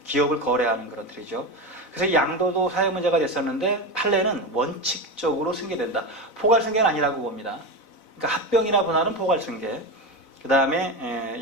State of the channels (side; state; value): right; late; 4.0 ms